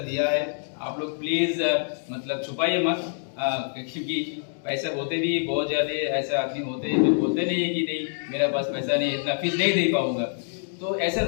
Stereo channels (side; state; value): right; silent; digital silence